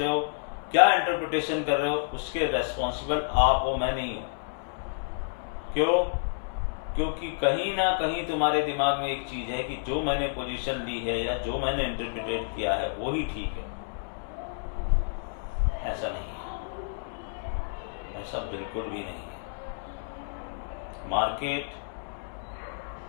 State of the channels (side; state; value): right; silent; digital silence